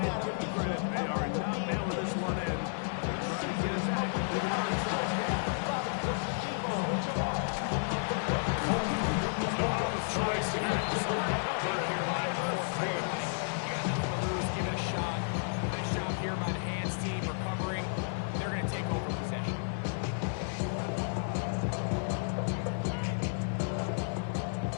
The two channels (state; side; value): silent; right; digital silence